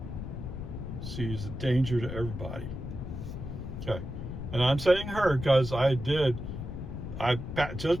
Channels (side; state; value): left; noise; rumble, 7 dB below the sound